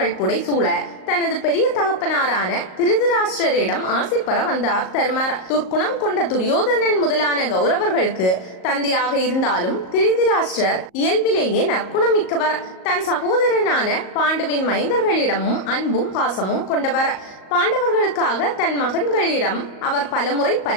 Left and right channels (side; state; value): right; late; 38 ms